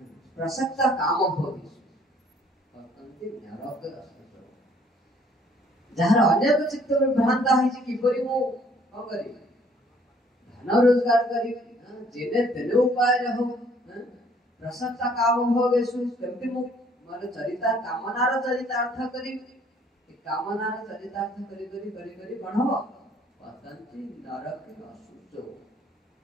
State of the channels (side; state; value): both; normal; correlation 0.60